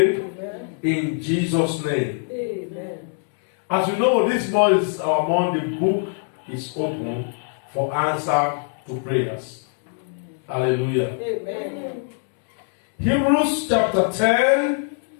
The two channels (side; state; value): right; silent; 60 dB below the other